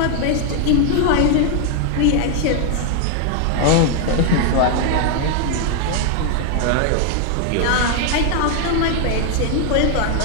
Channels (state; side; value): different; both; correlation 0.00